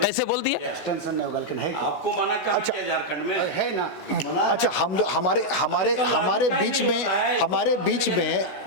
बोल दिया? एक्सटेंशन नहीं होगा, लेकिन है आपको मना कर दिया झारखंड में है ना। अच्छा, हमारे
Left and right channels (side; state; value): right; late; 16 ms